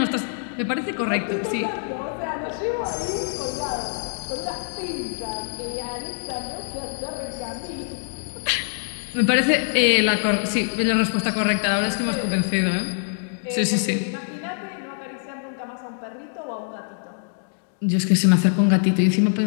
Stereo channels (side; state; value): right; silent; digital silence